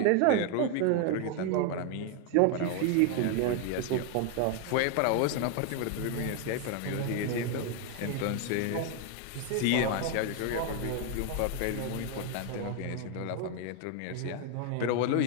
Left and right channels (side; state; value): both; different; correlation 0.01